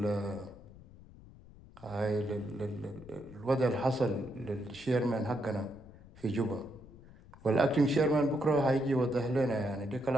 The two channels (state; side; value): noise; left; rumble, 20 dB below the sound